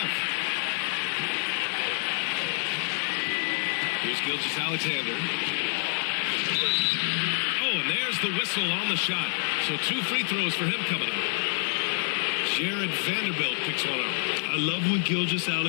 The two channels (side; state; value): right; silent; digital silence